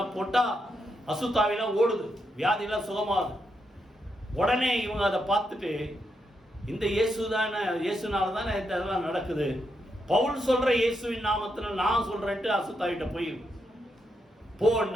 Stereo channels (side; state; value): both; normal; correlation 0.82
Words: போட்டால் அசுத்தாவிலாம் ஓடுது, வியாதியெல்லாம் சுகமாகுது. உடனே இவங்க அதை பார்த்துட்டு இந்த இயேசுனால தானே இதெல்லாம் நடக்குது, பவுல் சொல்கிற இயேசுவின் நாமத்தில் நான் சொல்கிறேன்ட்டு அசுத்தாவிட்ட போய்